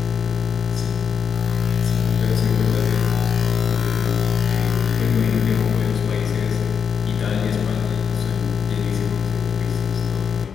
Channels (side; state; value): right; quieter; 6.8 dB